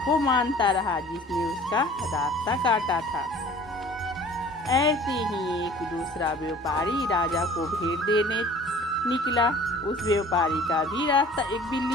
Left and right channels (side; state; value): both; normal; correlation 0.48